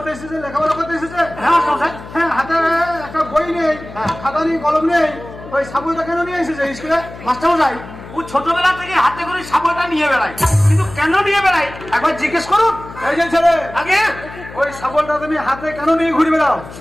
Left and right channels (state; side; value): noise; left; hum, 15 dB below the sound